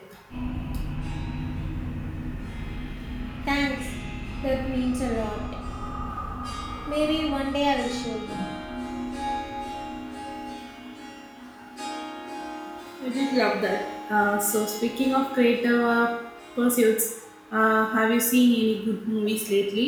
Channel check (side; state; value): both; identical; correlation 1.00